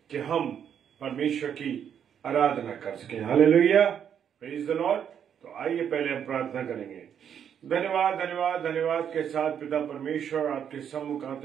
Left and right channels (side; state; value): left; quieter; 8.5 dB